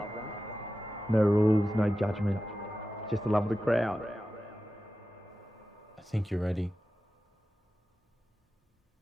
No rules, no judgment, just the love of the crowd. I think you're ready.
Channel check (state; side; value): normal; both; correlation 0.93